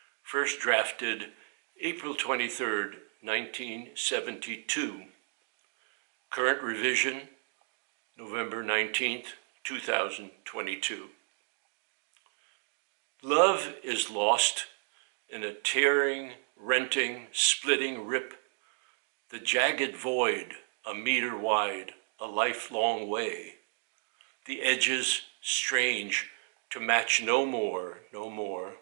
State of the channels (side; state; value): left; silent; 56 dB below the other